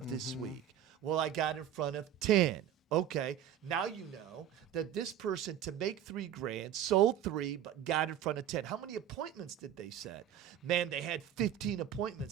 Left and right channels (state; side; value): quieter; left; 10.4 dB